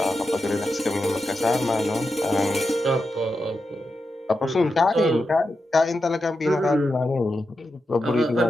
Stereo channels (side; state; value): both; normal; correlation 0.88